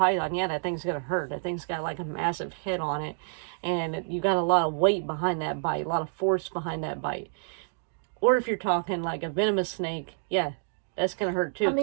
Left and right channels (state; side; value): silent; left; digital silence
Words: yeah, that thing's gonna hurt. That thing's got like a massive head on it, and you got a lot of weight behind that bite, a lot of force behind that bite. Or if you're talking like a venomous snake, yeah, that's gonna hurt too.